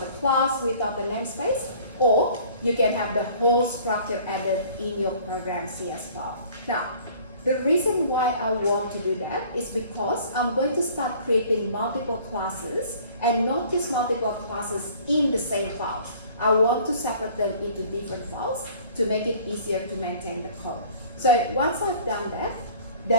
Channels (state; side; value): inverted; both; correlation -0.51